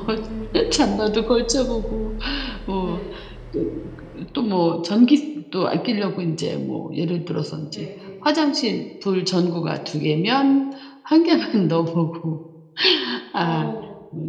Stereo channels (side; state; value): both; identical; correlation 1.00